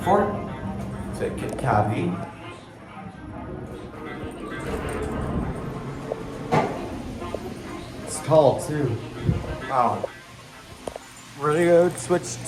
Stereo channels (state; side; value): identical; both; correlation 1.00